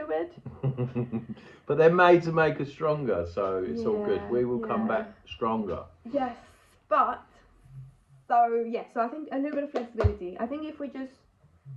it. But they're made to make us stronger, so it's all good. We will come back stronger. Yes, but so I think a little bit of flexibility. I think if we just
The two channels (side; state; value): both; identical; correlation 1.00